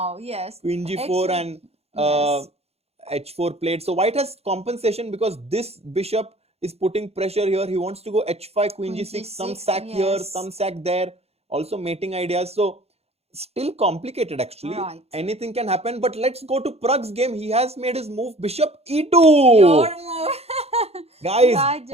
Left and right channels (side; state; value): left; late; 0.30 ms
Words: Yes. Queen g4 and Yes. h4 played. So white has compensation because this bishop is putting pressure here. He wants to go h5, queen Queen g6, some g6, sack here, yes. some sack there. Also mating ideas. So still complicated actually. Right. Anything can happen. But let's go to Pragg's game. He has made his move bishop e2. Your move. Guys,